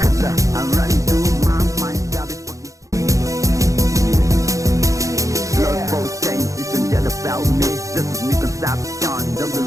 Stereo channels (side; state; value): left; late; 0.16 ms